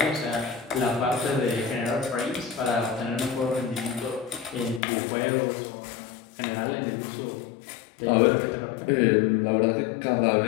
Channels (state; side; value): drops out; right; at 4.8 s